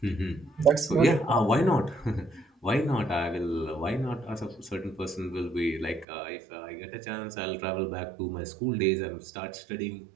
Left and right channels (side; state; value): left; drops out; at 6.1 s